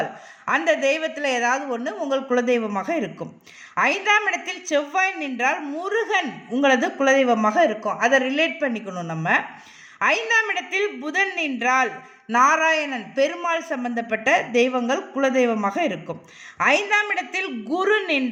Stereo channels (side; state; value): both; identical; correlation 1.00